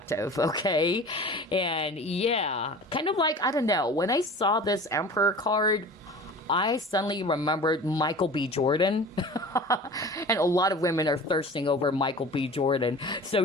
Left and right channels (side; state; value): both; normal; correlation 0.39